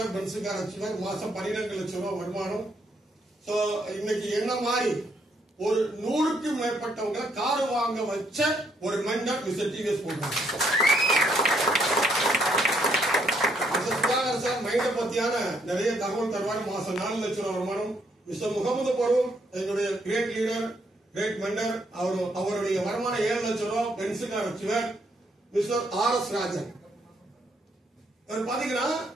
பென்ஸ் கார் வச்சுவார். மாசம் 12 லட்சம் ரூபாய் வருமானம். இன்னைக்கு என்ன மாதிரி ஒரு 100க்கு மேற்பட்டவங்க கார் வாங்க வச்ச ஒரு mentor mister TVS Paulraj sir. மைண்ட பத்தியான நிறைய தகவல் தருவார். மாசம் 4 லட்சம் ரூபாய் வருமானம். மிஸ்டர் முகமது பருவம் என்னுடைய கிரேட் லீடர், கிரேட் மென்டர். அவருடைய வருமானம் 7 லட்சம் ரூபாய், பென்ஸ் கார் வச்சுவார். Mister RS. ராஜன் அவர் பாத்தீங்கன்னா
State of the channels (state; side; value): normal; both; correlation 0.72